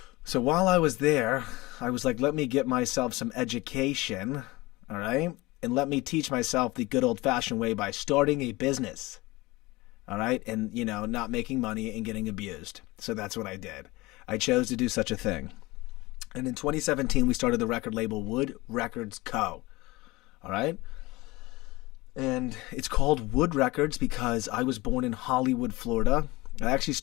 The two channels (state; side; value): quieter; right; 20.8 dB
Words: So while I was there, I was like, let me get myself some education, all right? And let me teach myself the good old-fashioned way by starting a business. All right, and, not making money and getting abused. So that's what I did. I chose to do such a thing. And in 2017, we started the record label Wood Records Co. All right? And it's called Wood Records because I was born in Hollywood, Florida. I actually